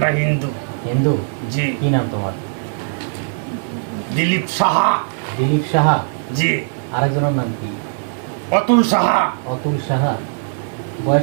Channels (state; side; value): silent; left; 66 dB below the other